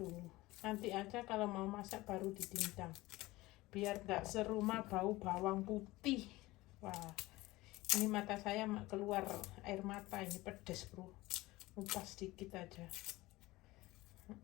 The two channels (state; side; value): quieter; right; 19.5 dB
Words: Nanti aja kalau mau masak baru dicincang. Biar nggak serumah bau bawang putih. Wah, ini mata saya keluar air mata, ini pedes bro. Ngupas sedikit aja.